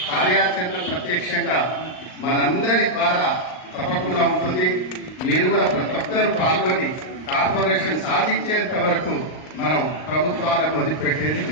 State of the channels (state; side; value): late; right; 38 ms